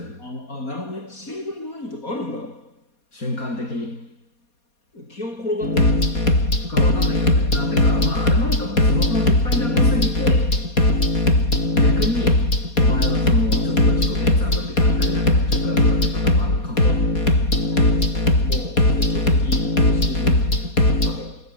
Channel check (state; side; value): late; right; 4.2 ms